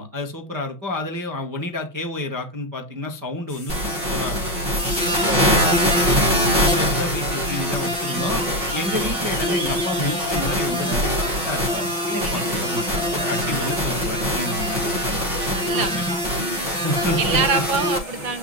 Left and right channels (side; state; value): left; late; 5.6 ms